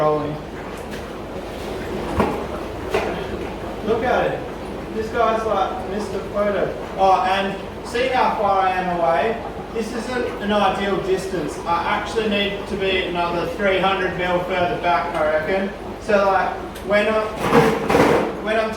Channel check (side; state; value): both; identical; correlation 1.00